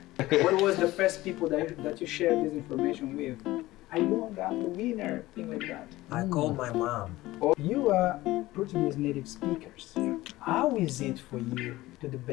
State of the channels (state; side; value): quieter; right; 17.8 dB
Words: What was the first people that you shared this information with? I won, I'm the winner, thing like that. I called my mom. Oh, you are Portuguese native speakers. How is it for you to